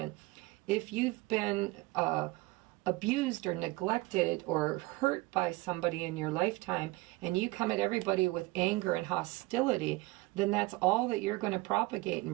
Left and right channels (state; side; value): quieter; left; 21.8 dB